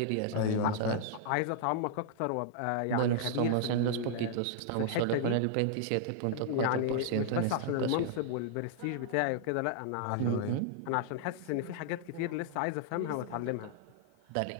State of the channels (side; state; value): both; different; correlation -0.01